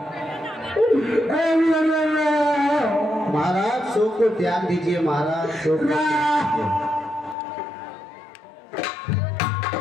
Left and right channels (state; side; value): drops out; right; at 7.4 s